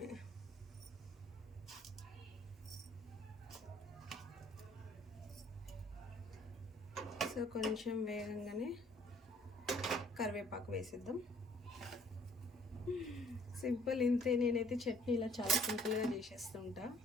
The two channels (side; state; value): both; normal; correlation 0.59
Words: సో కొంచెం వేగంగానే కరివేపాకు వేసేద్దాం. సింపుల్ ఇంతే. నేనైతే చట్నీ ఇలా చాలా సింపుల్గా చేసేస్తుంటా,